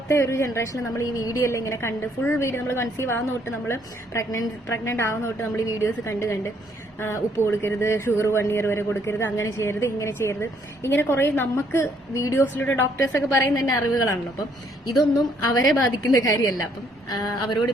ഒരു ജനറേഷനിൽ നമ്മൾ ഈ വീഡിയോ എല്ലാം ഇങ്ങനെ കണ്ട് ഫുൾ വീഡിയോ നമ്മൾ കൺസീവ് ആവുന്ന തൊട്ട് നമ്മൾ പ്രഗ്നന്റ് ആവുന്ന തൊട്ട് നമ്മൾ ഈ വീഡിയോസ് കണ്ട് ഉപ്പ് കൊടുക്കരുത്, ഷുഗർ 1 year വരെ കൊടുക്കരുത്, അങ്ങനെ ചെയ്യരുത്, ഇങ്ങനെ ചെയ്യരുത്, ഇങ്ങനെ കുറെ നമുക്ക് വീഡിയോസിലൂടെ ഡോക്ടേഴ്സൊക്കെ പറയുന്ന തന്നെ അറിവുകളാണല്ലോ. അപ്പം ഇതൊന്നും അവരെ ബാധിക്കുന്ന കാര്യമല്ല. അപ്പം അവരോട്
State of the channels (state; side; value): normal; both; correlation 0.67